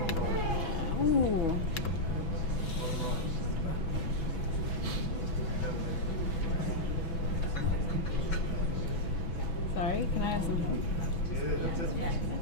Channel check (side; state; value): right; late; 6.1 ms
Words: Ooh. Sorry, can I have some help?